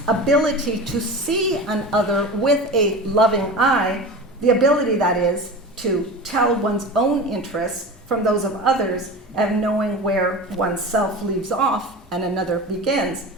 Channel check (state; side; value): normal; both; correlation 0.31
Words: ability to see an other with a loving eye, the ability, that is, to tell one's own interests from those of others and knowing where oneself leaves off and another begins,